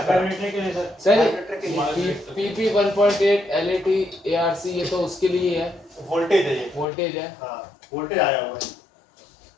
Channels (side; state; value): right; drops out; at 6.9 s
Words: सर PP 1.8 LAT ARC ये तो उसके लिए है, वोल्टेज है ये। वोल्टेज है। हाँ, वोल्टेज आया हुआ है।